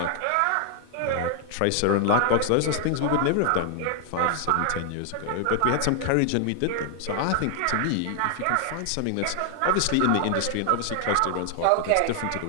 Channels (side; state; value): both; different; correlation 0.00